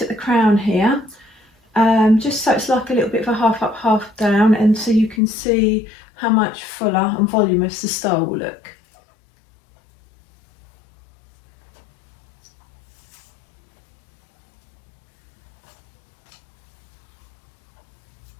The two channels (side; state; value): right; drops out; at 5.2 s